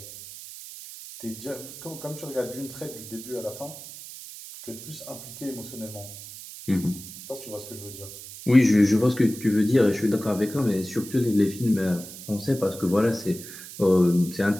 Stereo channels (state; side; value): noise; right; hiss, 13 dB below the sound